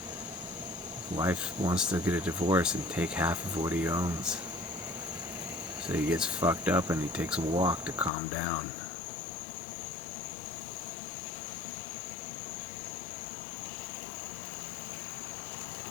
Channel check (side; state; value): right; drops out; at 8.1 s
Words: His wife wants to get a divorce and take half of what he owns. So he gets fucked up and he takes a walk to calm down.